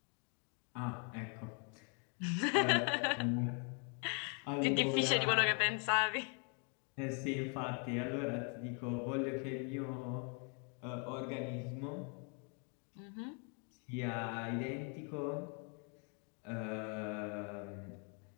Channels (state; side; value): quieter; right; 39.0 dB